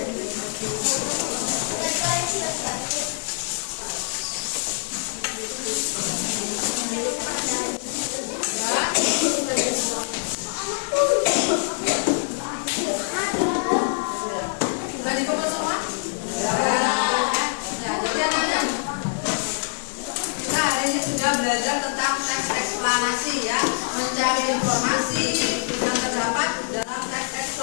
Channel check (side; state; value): right; silent; 62 dB below the other